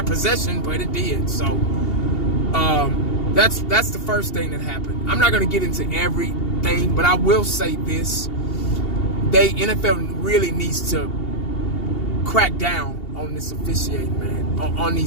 possession, but it did. So that's the first thing that happened. I'm not going to get into everything, but I will say this: NFL really needs to crack down on this officiating, man, on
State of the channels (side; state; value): right; late; 2.8 ms